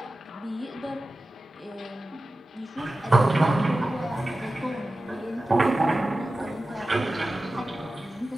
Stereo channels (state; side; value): normal; both; correlation 0.95